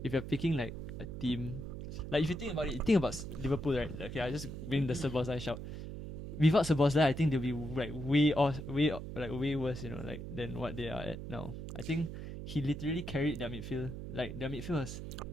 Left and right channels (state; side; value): noise; right; hum, 8 dB below the sound